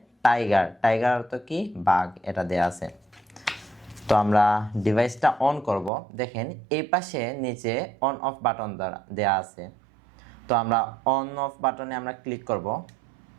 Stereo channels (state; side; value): drops out; left; at 5.9 s